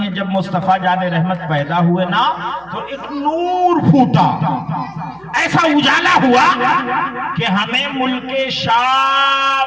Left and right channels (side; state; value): right; noise; hum, 29 dB below the sound